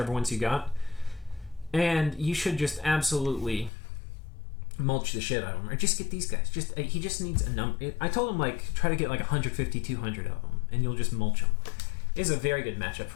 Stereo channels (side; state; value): right; drops out; at 3.7 s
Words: ones you got. And you should just absolutely mulch the shit out of him. Or just get these guys. He just needs a number. I told him, try to get 150, 200 of them, and you'll just mulch them. It is a very good matchup